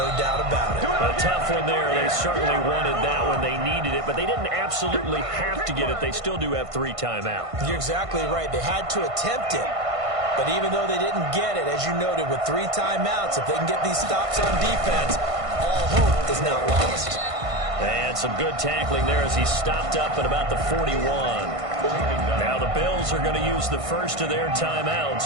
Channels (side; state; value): left; late; 1.5 ms